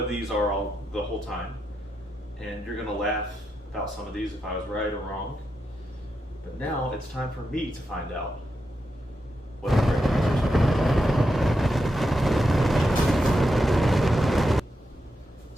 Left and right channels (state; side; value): normal; both; correlation 0.86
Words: these are the whole time. And you're gonna laugh about some of these if I was right or wrong. But now it's time for me to find out what the correct answers are.